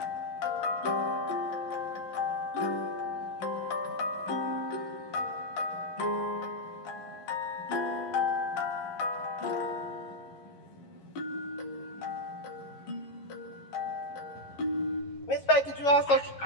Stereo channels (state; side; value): late; right; 11 ms